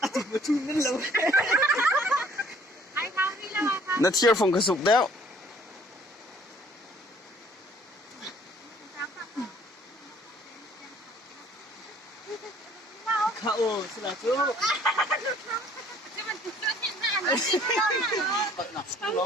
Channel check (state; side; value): normal; both; correlation 0.57